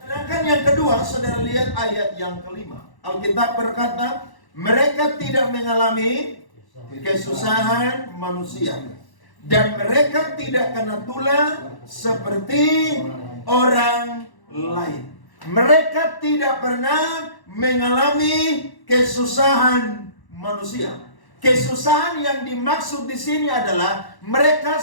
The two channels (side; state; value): right; late; 1.1 ms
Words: Sedangkan yang kedua, saudara lihat ayat yang kelima. Alkitab berkata, mereka tidak mengalami kesusahan manusia. Dan mereka tidak kena tulah seperti orang lain. Mereka tidak pernah mengalami kesusahan manusia. Kesusahan yang dimaksud di sini adalah mereka